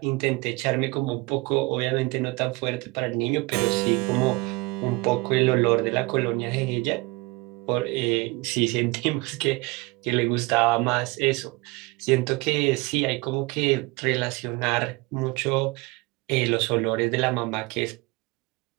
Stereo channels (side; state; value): left; quieter; 24.8 dB